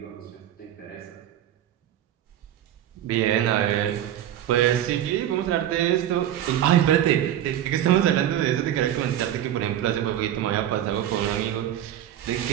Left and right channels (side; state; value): left; quieter; 11.5 dB